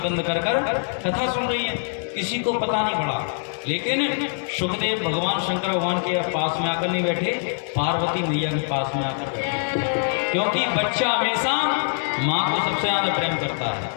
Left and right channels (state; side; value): silent; right; 63 dB below the other